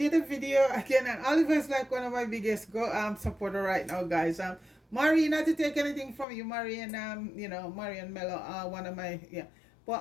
a video again, and Oliver is like one of my biggest supporter right now, guys. Marie, not to take anything from you, Marie, and Marie and Mello, one of my, yeah.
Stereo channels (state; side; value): drops out; right; at 6.2 s